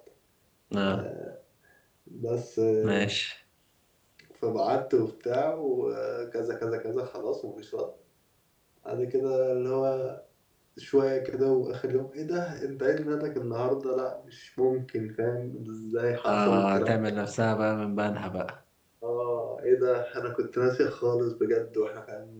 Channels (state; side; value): identical; both; correlation 1.00